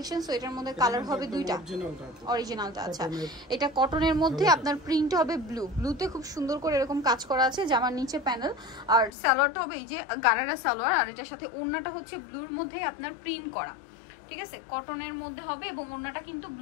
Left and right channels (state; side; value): drops out; right; at 9.1 s